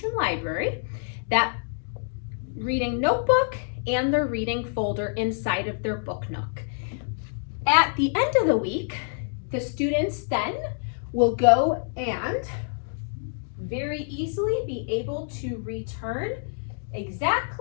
library, that reading notebook, and their reading folder inside of their book nook. At the end of the week, the students then will go and very easily be able to return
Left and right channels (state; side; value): silent; right; digital silence